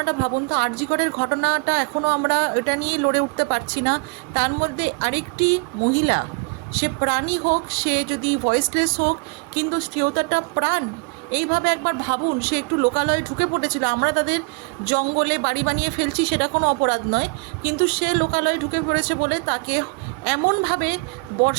ভাবুন তো, আরজি করের ঘটনাটা এখনও আমরা এটা নিয়ে লড়ে উঠতে পারছি না। তার মধ্যে আরেকটি মহিলা, সে প্রাণী হোক, সে যদি ভয়েসলেস হোক, কিন্তু স্ত্রীয়তাটা প্রাণ। এইভাবে একবার ভাবুন, সে একটু লোকালয়ে ঢুকে পড়েছিল, আমরা তাদের জঙ্গলে বাড়ি বানিয়ে ফেলছি সেটা কোনো অপরাধ নয়, কিন্তু সে লোকালয়ে ঢুকে পড়েছে বলে তাকে এমনভাবে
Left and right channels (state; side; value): quieter; left; 31.5 dB